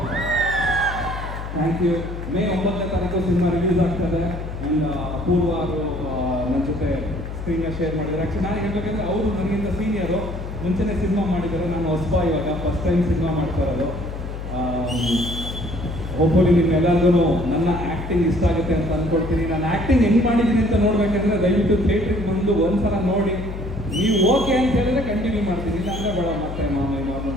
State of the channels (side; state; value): left; noise; hum, 8 dB below the sound